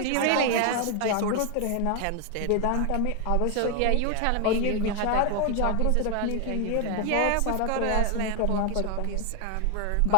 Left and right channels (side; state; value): both; different; correlation 0.01